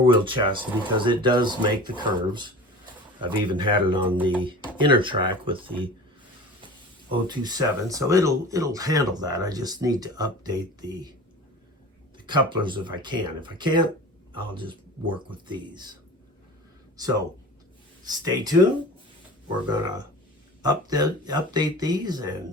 chassis, because it does make the curves. I've even had it on the inner track with the 027, so it'll handle that. I just need to update the couplers if I can. If I can't, I'll just work with these. So stay tuned. We're gonna update these,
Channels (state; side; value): normal; both; correlation 0.37